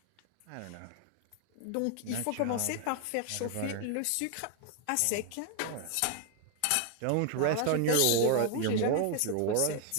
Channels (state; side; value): different; both; correlation 0.00